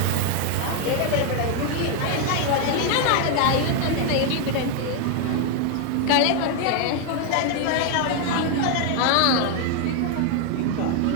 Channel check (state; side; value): different; both; correlation 0.01